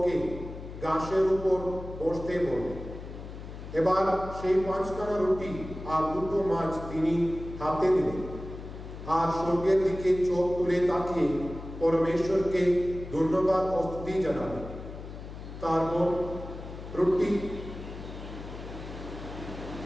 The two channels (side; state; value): left; noise; hum, 11 dB below the sound